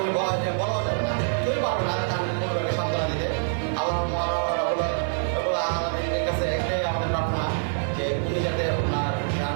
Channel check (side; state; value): left; silent; 61 dB below the other